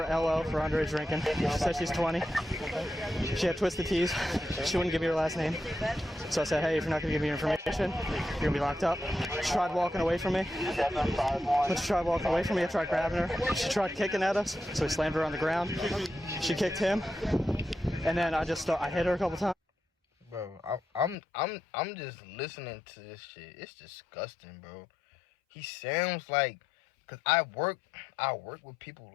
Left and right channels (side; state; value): right; drops out; at 21.2 s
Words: LO, for underage drinking. She said she's 20. She had twisted tees. She wouldn't give me her last name. So I said, hey, if you're not going to give me your information, you're going to be locked up. She tried walking away from me. When she tried walking away from me, I tried grabbing her. She tried kicking at us, so we slammed her on the ground. She kicked him, and then I hit her a couple times. Bro, I'm just listening to this shit. It's disgusting, bro. He sounds like, cause I work with people